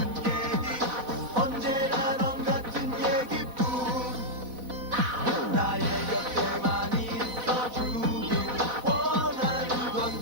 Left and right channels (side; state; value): left; late; 4.1 ms